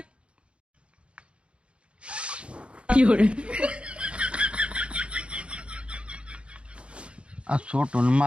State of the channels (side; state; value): left; late; 0.058 ms